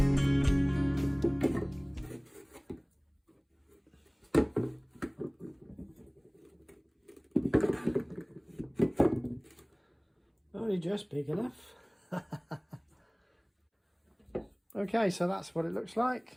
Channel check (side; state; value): both; identical; correlation 1.00